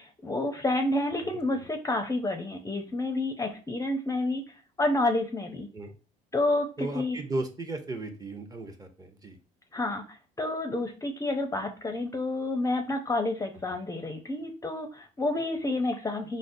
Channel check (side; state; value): both; normal; correlation 0.70